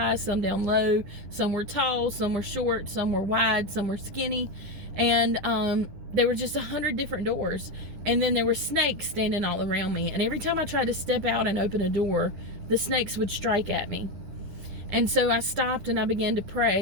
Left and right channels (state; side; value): late; left; 10 ms